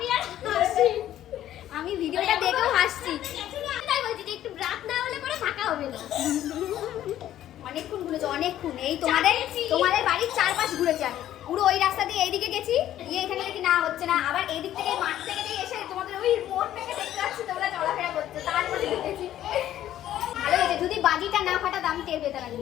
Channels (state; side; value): quieter; right; 12.3 dB